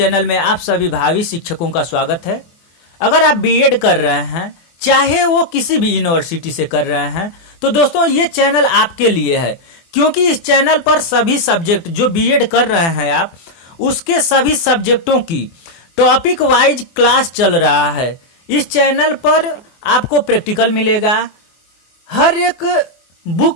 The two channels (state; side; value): late; right; 24 ms